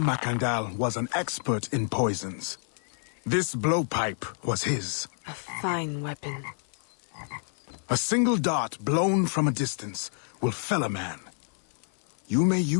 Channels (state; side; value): silent; right; 56 dB below the other